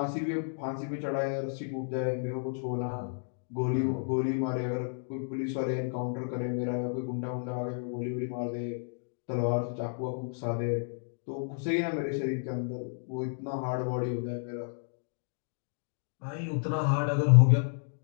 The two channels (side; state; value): right; silent; digital silence